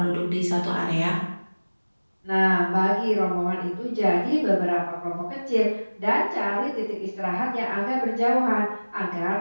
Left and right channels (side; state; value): both; inverted; correlation -1.00